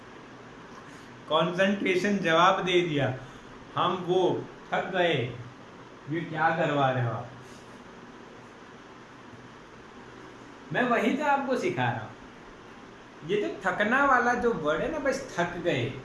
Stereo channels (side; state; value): both; identical; correlation 1.00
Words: कंसंट्रेशन जवाब दे दिया, हम वो थक गए। ये क्या करवा रहे हो आप? मैं वही तो आपको सिखा रहा हूँ। ये जो थकना वाला जो वर्ड है ना, बस थक गए,